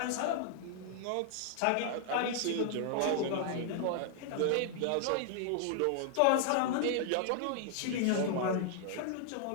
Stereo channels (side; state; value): both; different; correlation -0.01